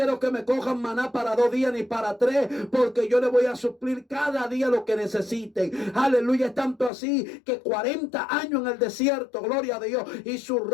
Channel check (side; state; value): right; drops out; at 6.9 s